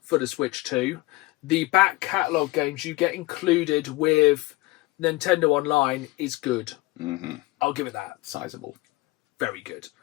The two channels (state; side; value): quieter; right; 20.7 dB